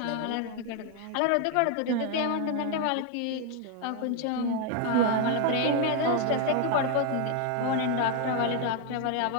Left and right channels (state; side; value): different; both; correlation 0.01